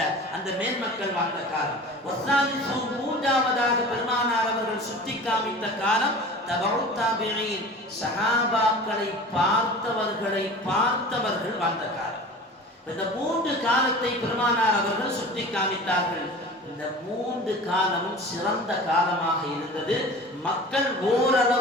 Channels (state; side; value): normal; both; correlation 0.38